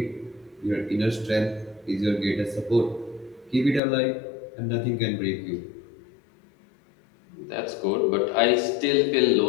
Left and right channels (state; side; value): drops out; right; at 3.8 s